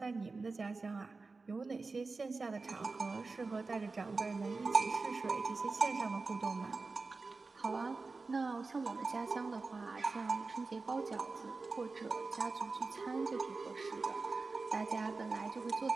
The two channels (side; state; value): left; quieter; 3.9 dB